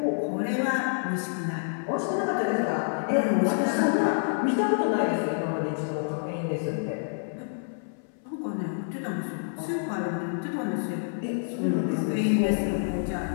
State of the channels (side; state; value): right; silent; 60 dB below the other